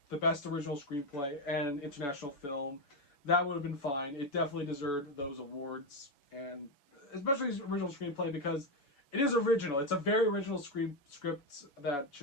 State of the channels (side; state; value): right; late; 7.0 ms